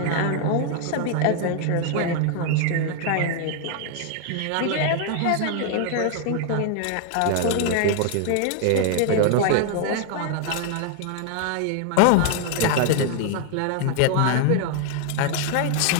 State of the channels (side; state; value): both; different; correlation 0.00